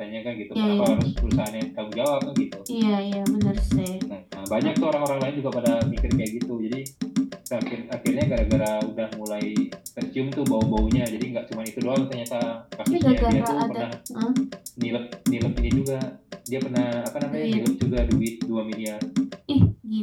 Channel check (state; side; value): identical; both; correlation 1.00